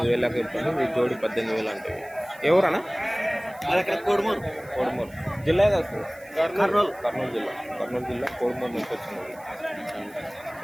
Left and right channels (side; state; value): right; noise; hiss, 25 dB below the sound